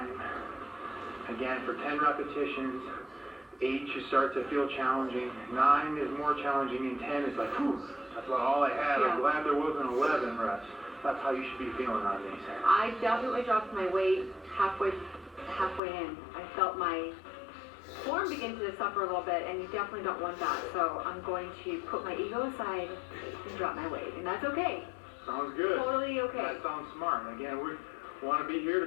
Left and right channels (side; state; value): right; drops out; at 15.8 s